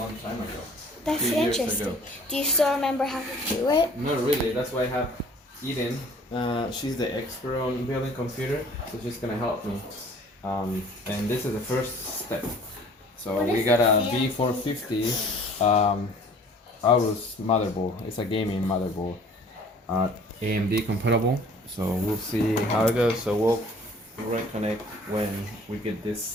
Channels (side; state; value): both; normal; correlation 0.51